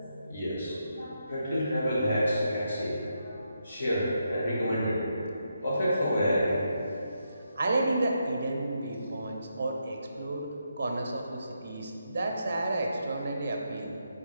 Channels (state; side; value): inverted; both; correlation -0.82